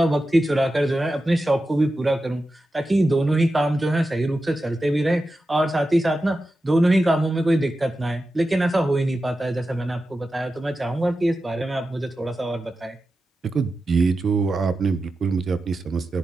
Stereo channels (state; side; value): normal; both; correlation 0.92